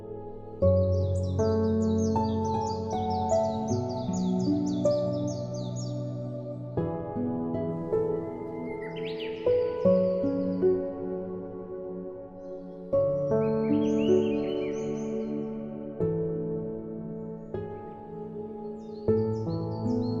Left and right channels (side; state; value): both; identical; correlation 1.00